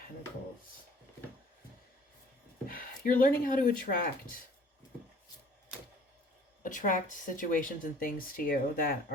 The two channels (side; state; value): both; normal; correlation 0.52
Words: You're learning how to attract situations and things to you that